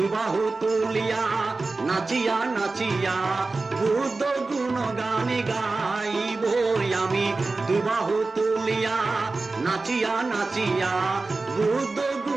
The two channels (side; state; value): left; quieter; 3.6 dB